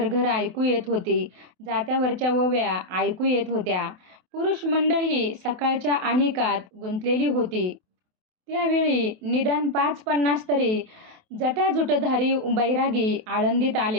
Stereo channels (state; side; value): late; left; 28 ms